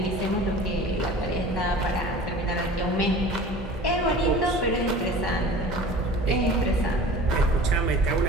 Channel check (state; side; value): normal; both; correlation 0.41